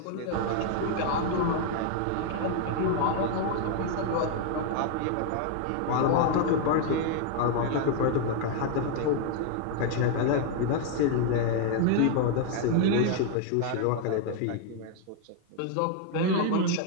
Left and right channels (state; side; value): different; both; correlation 0.00